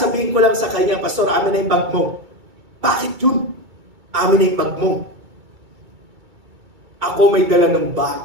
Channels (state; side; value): late; left; 2.3 ms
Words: ko lang sa kanya, Pastor, amin na yung bag mo. Bakit yun? Amin na yung bag mo. Ako may dala ng